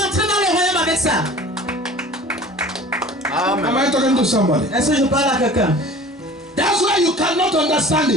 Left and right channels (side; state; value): both; normal; correlation 0.43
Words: entrer dans le royaume avec ça. Am Amen. I talking to somebody? Est-ce que je parle à quelqu'un? That's why you cannot understand